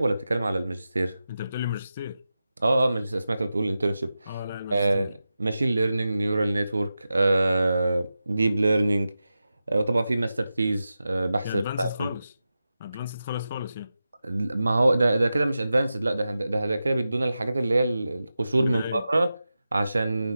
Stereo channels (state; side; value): inverted; both; correlation -0.92